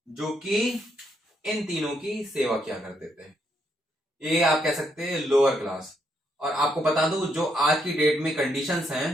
जो कि इन तीनों की सेवा किया करते थे। ये आप कह सकते हैं लोअर क्लास। और आपको बता दूं, जो आज की डेट में कंडीशंस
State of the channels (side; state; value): both; normal; correlation 0.76